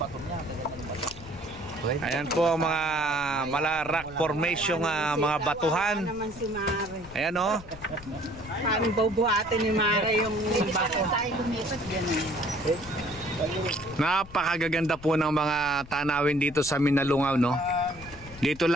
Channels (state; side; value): noise; left; rumble, 17 dB below the sound